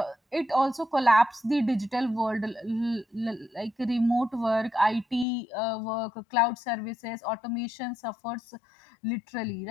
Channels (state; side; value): drops out; right; at 5.2 s